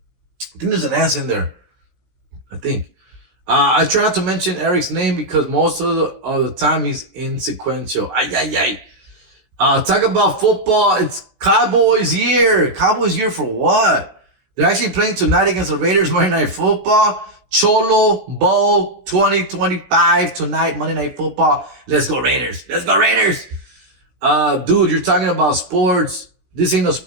I think there's an S in there. I think. I try not to mention Eric's name because most of the time he's insequential. Talk about football. It's Cowboys year. Cowboys year for what? They're actually playing tonight against the Raiders Monday Night Football. Cholo Bowl 2025 tonight, Monday Night Football. Let's go Raiders. Let's go Raiders. Dude, you're talking about sports. This ain't a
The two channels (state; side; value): late; left; 16 ms